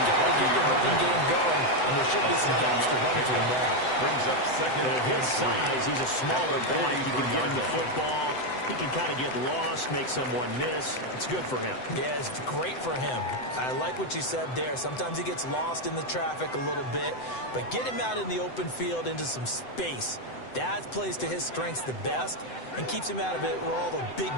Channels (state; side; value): late; right; 7.9 ms